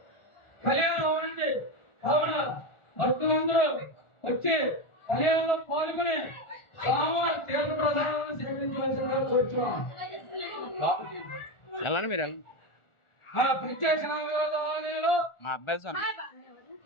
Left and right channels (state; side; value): late; right; 1.4 ms